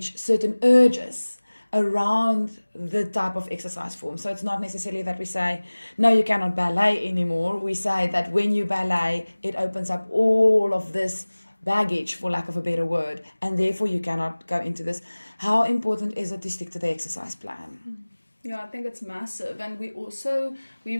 certain urges around the type of exercise form. So it's not necessarily that we say, no, you cannot ballet anymore. We say that when you ballet, it opens up all of this baggage, for lack of a better word, and therefore you cannot go into this. How important is it to stick to the exercise plan? Yeah, I think it's massive. And we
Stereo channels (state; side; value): inverted; both; correlation -1.00